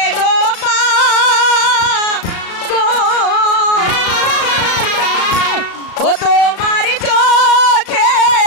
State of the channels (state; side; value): late; right; 36 ms